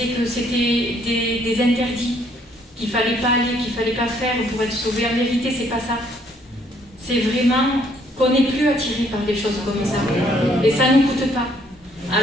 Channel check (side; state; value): both; normal; correlation 0.66